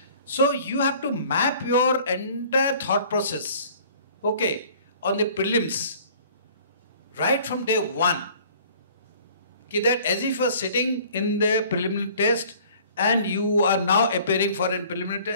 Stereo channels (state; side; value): inverted; both; correlation -0.51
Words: So you have to map your entire thought process, okay, on the prelims, right from day one. That as if you are sitting in the preliminary test and you are now appearing for a preliminary